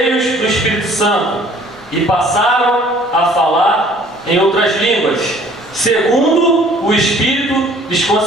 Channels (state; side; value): normal; both; correlation 0.55